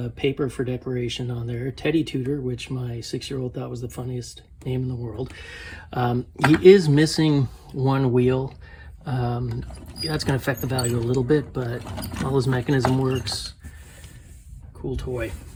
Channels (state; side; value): identical; both; correlation 1.00